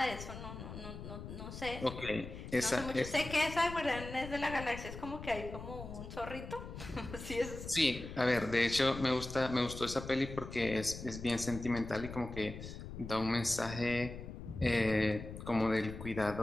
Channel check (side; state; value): left; noise; rumble, 10 dB below the sound